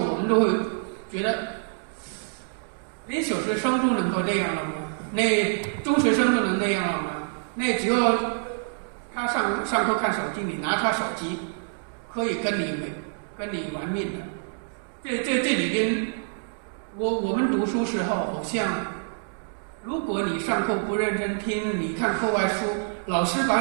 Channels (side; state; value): left; silent; digital silence